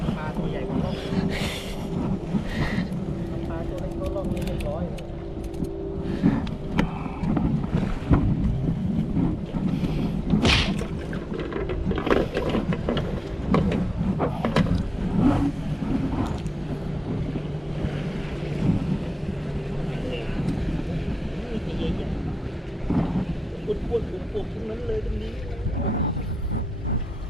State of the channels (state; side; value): normal; both; correlation 0.94